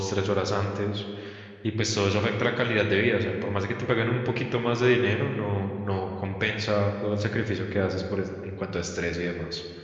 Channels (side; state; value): both; identical; correlation 1.00